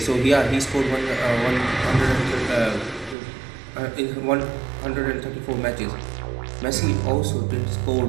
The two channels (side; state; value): left; drops out; at 3.2 s